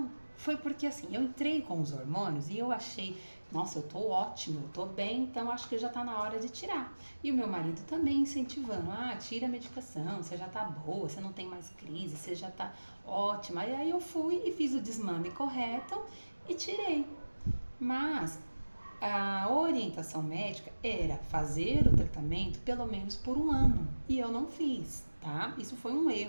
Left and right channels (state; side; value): inverted; both; correlation -1.00